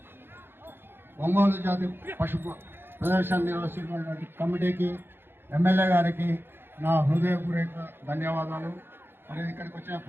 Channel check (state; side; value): late; left; 0.10 ms